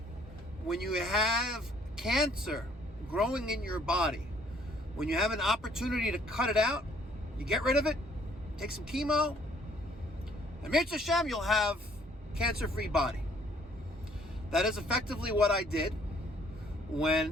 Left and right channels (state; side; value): normal; both; correlation 0.62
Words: when you have cancer growing in your body, when you have an opportunity to cut it out, you get rid of it, take some chemo, and Mitzvah Hashem, you'll have cancer-free body. That is effectively what I did